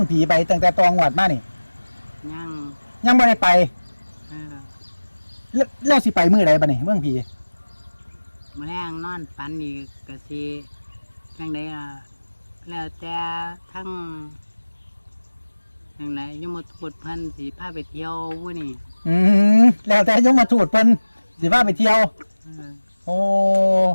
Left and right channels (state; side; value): inverted; both; correlation -1.00